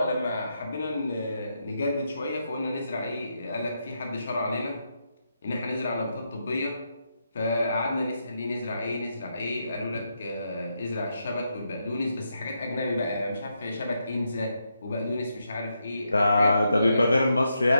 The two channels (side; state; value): both; inverted; correlation -0.83